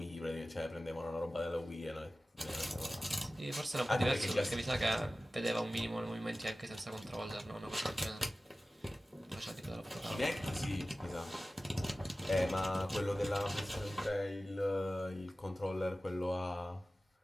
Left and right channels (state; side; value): normal; both; correlation 0.96